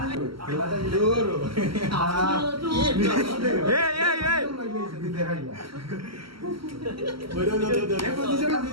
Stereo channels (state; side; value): late; left; 0.74 ms